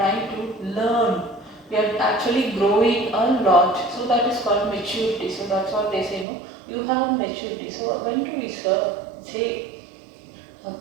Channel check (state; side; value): drops out; left; at 6.2 s